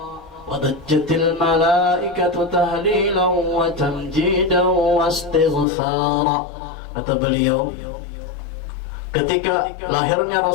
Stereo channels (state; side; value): drops out; right; at 5.7 s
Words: wadajjatil malaikatu tahlilan wa tamjidan wastighfara. Kata beliau, ketika lahirnya